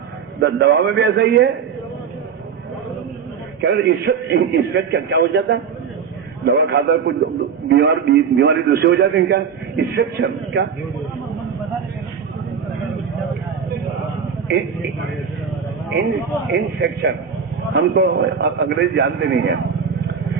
دوا میں بھی ایسا ہی ہے. کیا ہو جاتا ہے؟ دوا کھاتا ہے کچھ بیماری دوسری ہو جاتی ہے. کیا انفیکشن؟ کیا انفیکشن؟ ہم تو انگریزی جانتے نہیں ہیں.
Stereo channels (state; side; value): quieter; left; 6.9 dB